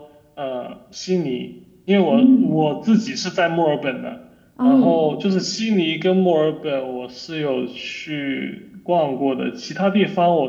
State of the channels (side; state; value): both; identical; correlation 1.00